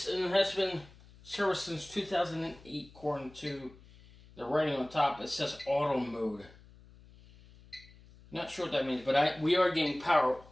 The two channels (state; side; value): noise; left; hum, 23 dB below the sound